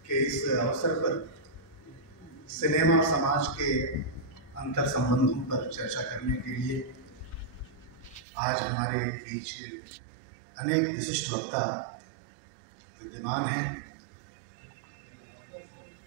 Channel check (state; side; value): drops out; left; at 8.2 s